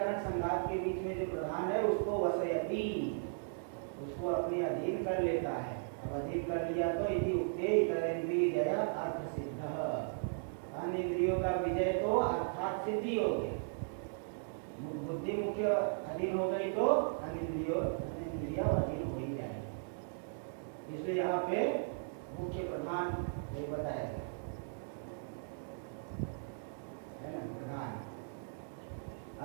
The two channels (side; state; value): left; silent; digital silence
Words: संघात के बीच में जो प्रधान है उसको वसयति, उसको अपने अधीन कर लेता है। अब अधीन कर लिया तो यदि उक्ते इतरेंद्रिय जय अर्थ सिद्ध, अन्य इंद्रियों का विजय तो अर्थात सिद्धि हो गया। बुद्धि मुख्य अधीन हो गई तो अन्य इंद्रिया अधीन हो ही जाएगी। इसलिए यहाँ पे मुख्य प्रधान ये बताया गया है ना, प्रधान